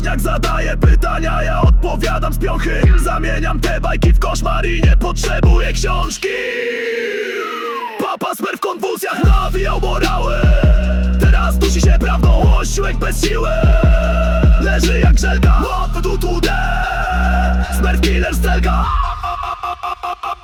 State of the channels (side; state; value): both; identical; correlation 1.00